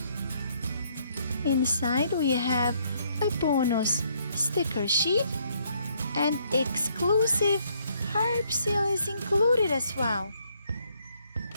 Inside we have a bonus sticker sheet and exclusive Harper seal is included as well.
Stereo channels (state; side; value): inverted; both; correlation -0.69